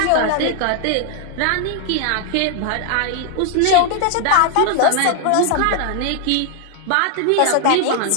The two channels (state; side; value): different; both; correlation 0.00